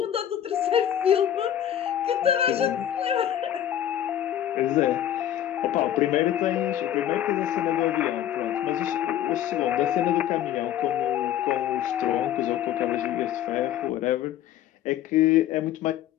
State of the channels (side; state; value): right; quieter; 11.1 dB